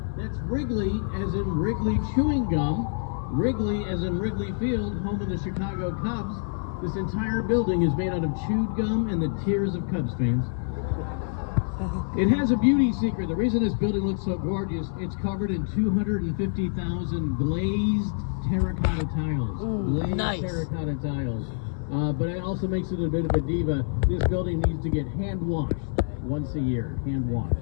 That's Wrigley, as in Wrigley chewing gum. Wrigley, as in Wrigley Field, home of the Chicago Cubs. This entire building is made out of chewed gum and the tears of Cubs fans. It has a beauty secret. The reason this building looks so gorgeous, it's covered in 250,000 glazed terracotta tiles. Glazed nice. Terracotta tiles. But it also makes it a bit of a diva. This building needs to get hand washed once a year. Hand washed.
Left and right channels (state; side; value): silent; right; 60 dB below the other